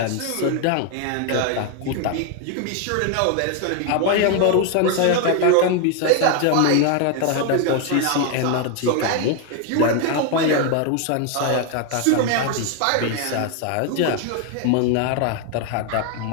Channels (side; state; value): both; different; correlation 0.01